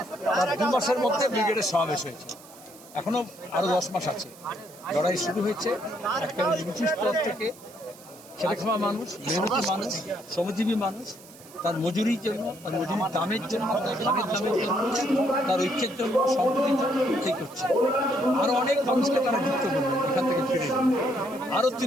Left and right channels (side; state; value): right; noise; hiss, 21 dB below the sound